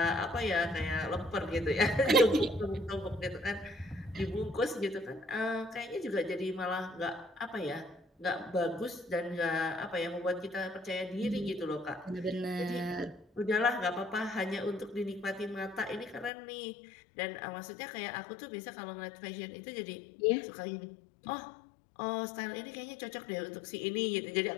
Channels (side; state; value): right; drops out; at 16.3 s